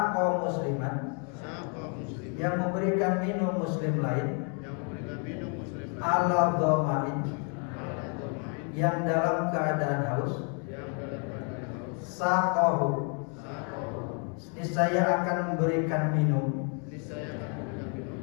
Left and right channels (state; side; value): quieter; right; 39.5 dB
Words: musliman, yang memberikan minum muslim lain, ala dhamain, yang dalam keadaan haus, saqahu, niscaya akan memberikan minum